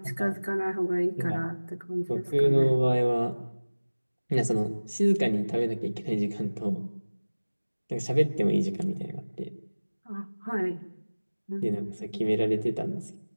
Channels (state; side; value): inverted; both; correlation -1.00